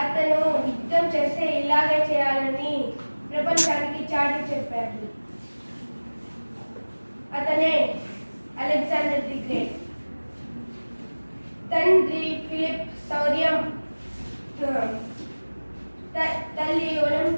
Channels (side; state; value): both; inverted; correlation -1.00